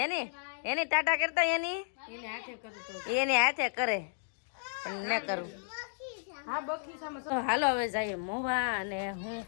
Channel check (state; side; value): silent; right; digital silence